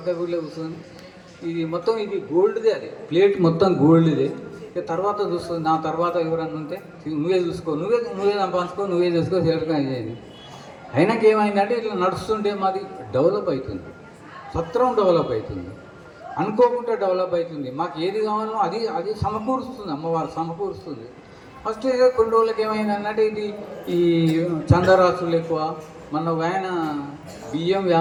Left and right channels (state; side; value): identical; both; correlation 1.00